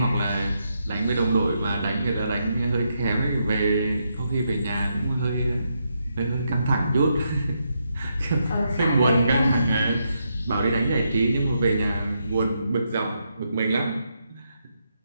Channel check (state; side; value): inverted; both; correlation -0.81